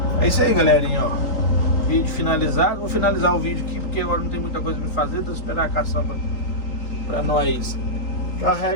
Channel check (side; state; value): right; late; 3.8 ms